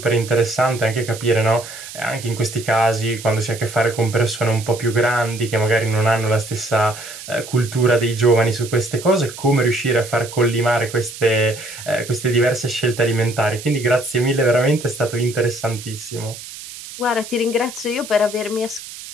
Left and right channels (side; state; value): right; noise; hiss, 13 dB below the sound